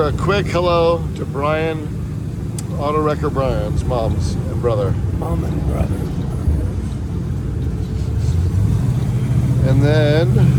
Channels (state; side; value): identical; both; correlation 1.00